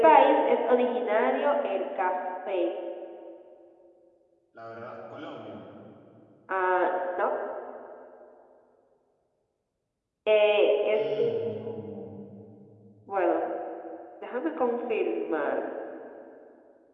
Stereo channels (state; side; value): identical; both; correlation 1.00